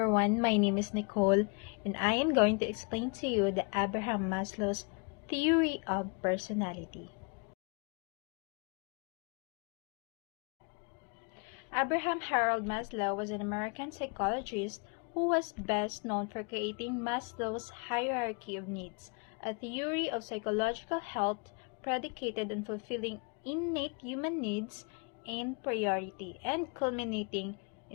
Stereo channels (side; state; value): right; quieter; 35.3 dB